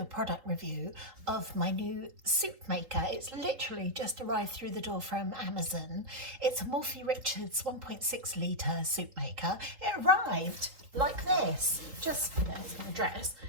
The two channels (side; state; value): left; late; 3.8 ms